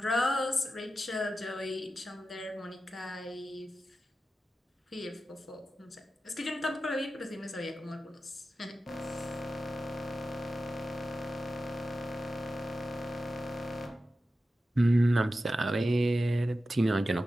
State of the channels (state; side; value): normal; both; correlation 0.93